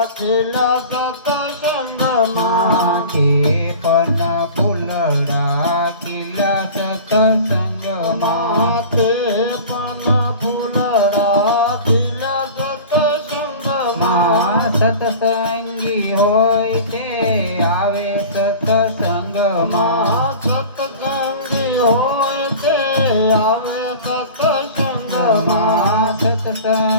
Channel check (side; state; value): both; inverted; correlation -0.38